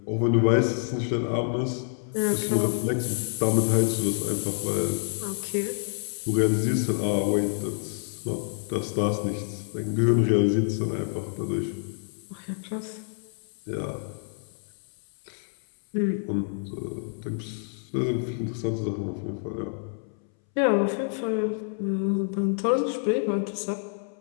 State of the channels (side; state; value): right; silent; 60 dB below the other